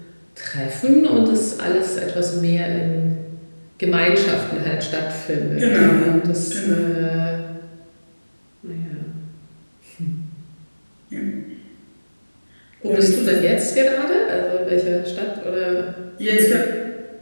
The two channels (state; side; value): inverted; both; correlation -1.00